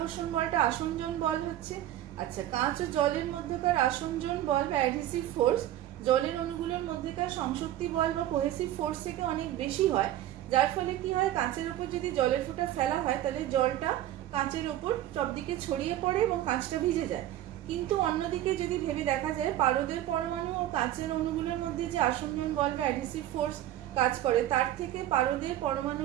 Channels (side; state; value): left; quieter; 13.2 dB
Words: বলটা আসঞ্জন বল হচ্ছে। আচ্ছা, কাঁচ ও জলের মধ্যকার আসঞ্জন বল বা অ্যাডহেসিভ ফোর্স জলের অণুগুলোর মধ্যেকার সংশক্তি বল বা কোহেসিভ ফোর্স থেকে অনেক বেশি হয়, যার ফলে কি হয়, কাঁচের ওপর যদি জলের ফোঁটা ফেলা হয় তাহলে জলটা কাঁচের ওপর সব দিকে ছড়িয়ে পড়ে এবং কাঁচটা ভিজে যায়। কিন্তু অন্যদিকে যদি ভেবে দেখা যায়, পারদের পরমাণু ও কাঁচের অণুগুলোর মধ্যে যে আসঞ্জন বল বা অ্যাডহেসিভ ফোর্স কাজ করে, তার থেকে পারদের